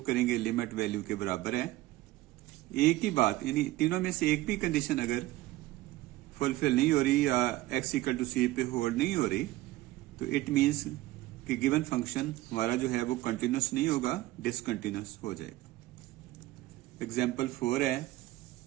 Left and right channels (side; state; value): left; quieter; 17.2 dB